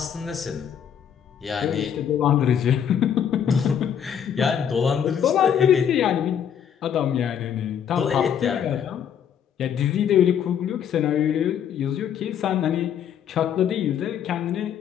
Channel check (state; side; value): quieter; right; 8.6 dB